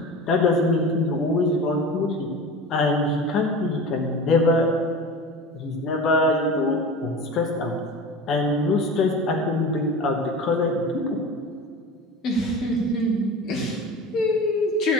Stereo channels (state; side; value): normal; both; correlation 0.33